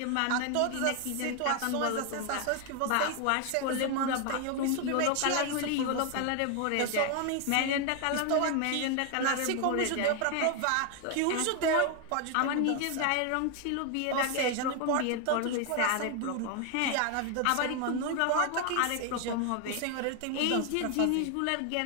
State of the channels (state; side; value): different; both; correlation 0.01